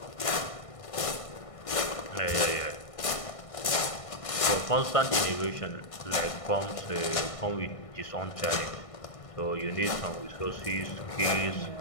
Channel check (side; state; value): right; late; 1.6 ms